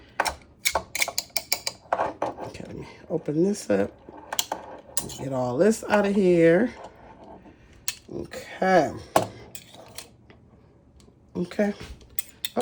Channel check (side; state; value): both; identical; correlation 1.00